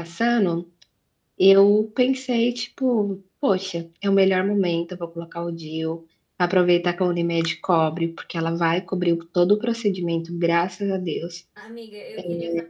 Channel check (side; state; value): both; identical; correlation 1.00